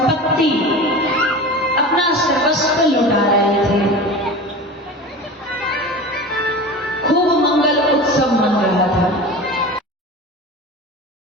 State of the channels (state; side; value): normal; both; correlation 0.33